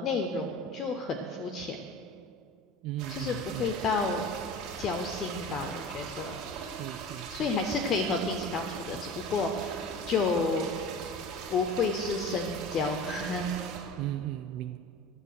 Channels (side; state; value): both; normal; correlation 0.36